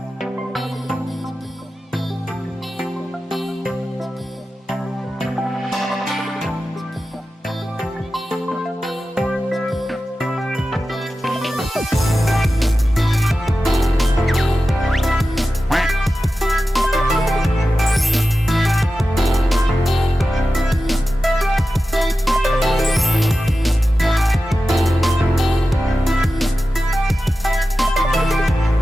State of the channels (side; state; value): both; normal; correlation 0.93